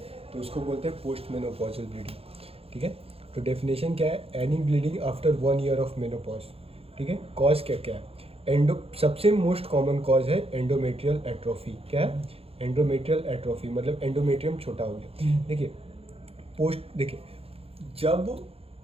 तो उसको बोलते हैं पोस्ट मेनोपॉजल ब्लीडिंग। ठीक है, तो डेफिनेशन क्या है? Any bleeding after 1 year of menopause. ठीक है, कॉज क्या क्या है? सबसे मोस्ट कॉमन कॉज है एंडोमेट्रियल एट्रोफी। क्या है? एंडोमेट्रियल एट्रोफी मतलब एंडोमेट्रियम छोटा हो गया। देखिए जब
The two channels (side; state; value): left; late; 0.28 ms